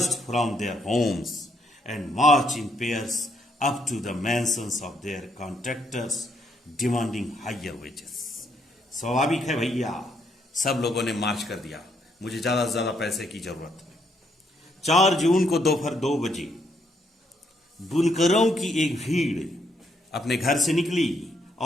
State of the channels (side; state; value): both; normal; correlation 0.73